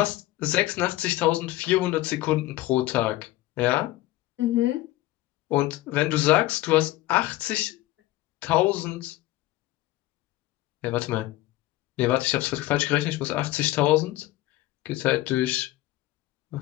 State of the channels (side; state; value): right; quieter; 16.8 dB